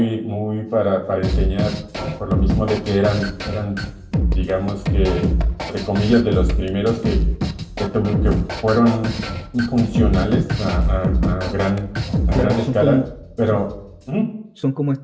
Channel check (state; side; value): identical; both; correlation 1.00